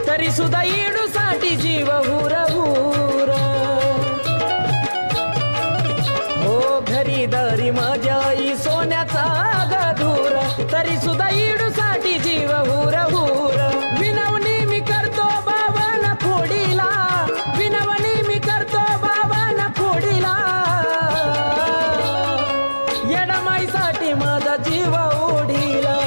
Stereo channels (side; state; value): both; inverted; correlation -1.00